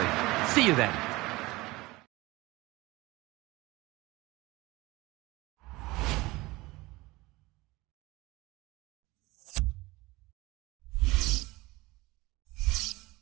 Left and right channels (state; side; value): quieter; left; 20.9 dB